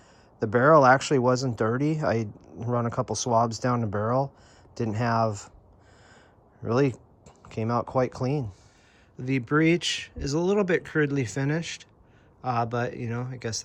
The barrel actually wasn't dirty. I run a couple swabs down the barrel. Really came out quite clean. The breech is a little bit crudely finished, but you know, I guess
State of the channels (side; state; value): both; identical; correlation 1.00